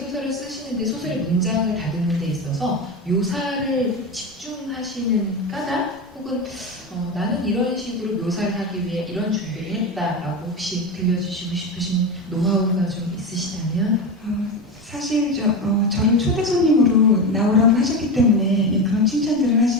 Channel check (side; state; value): both; normal; correlation 0.20